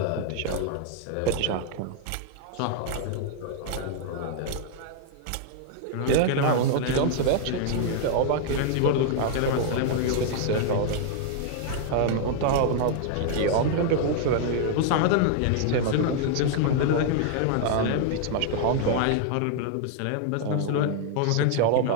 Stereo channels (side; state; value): both; different; correlation 0.00